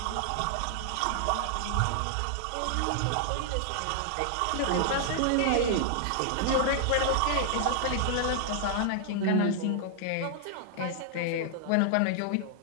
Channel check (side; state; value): both; different; correlation 0.00